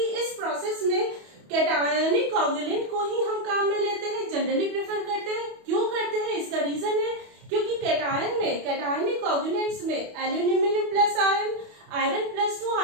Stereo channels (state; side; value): late; left; 28 ms